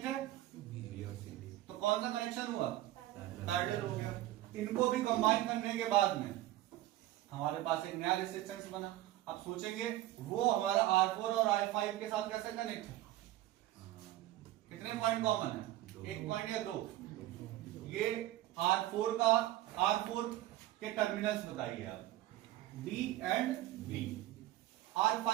है, B और C। तो कौन सा कनेक्शन हुआ, पैरेलल हो गया। इनको भी कंबाइन करने के बाद में हमारे पास एक नया रेसिस्टेंस बना। अब सोचेंगे वो हमारा R4 और R5 के साथ कैसे कनेक्ट है, कितने पॉइंट कॉमन है, 1 पॉइंट या 2। ये R4 के टर्मिनल्स बताइए आप, D एंड B।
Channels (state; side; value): quieter; left; 15.1 dB